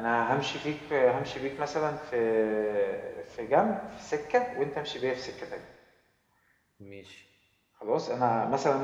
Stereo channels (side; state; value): both; identical; correlation 1.00